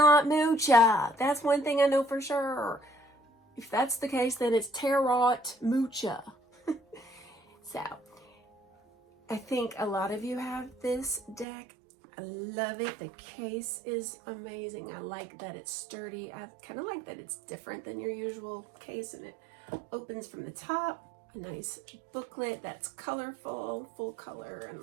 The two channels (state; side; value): drops out; left; at 11.5 s